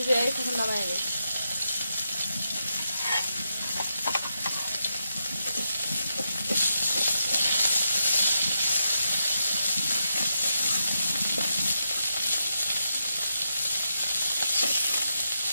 এখন নামাই নিই।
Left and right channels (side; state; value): both; inverted; correlation -0.84